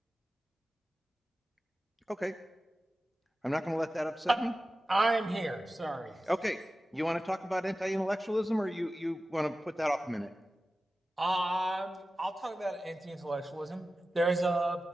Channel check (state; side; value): normal; both; correlation 0.94